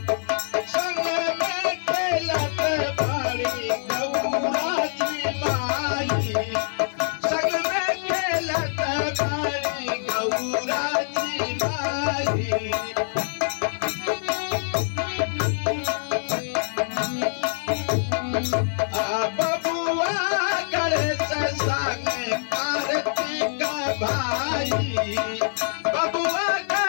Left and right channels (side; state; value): right; silent; digital silence